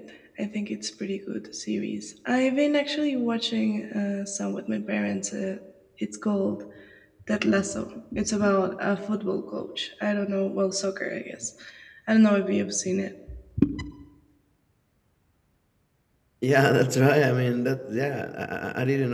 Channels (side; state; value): both; identical; correlation 1.00